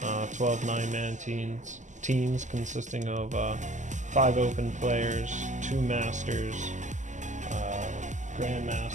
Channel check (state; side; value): late; left; 0.35 ms